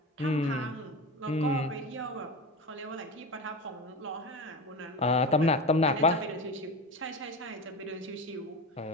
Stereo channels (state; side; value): normal; both; correlation 0.25